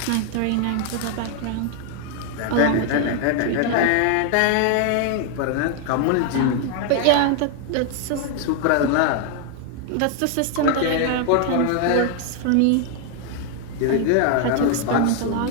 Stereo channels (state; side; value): different; both; correlation 0.00